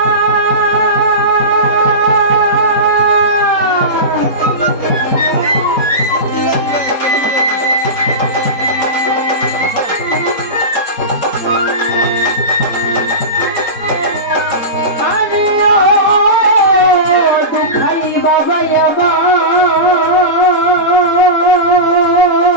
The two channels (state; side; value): late; right; 4.1 ms